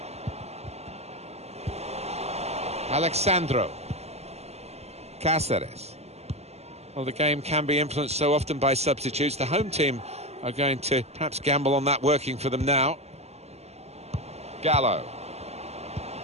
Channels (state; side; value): late; left; 0.31 ms